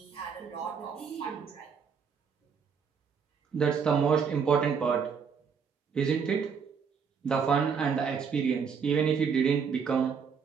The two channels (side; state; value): left; quieter; 6.3 dB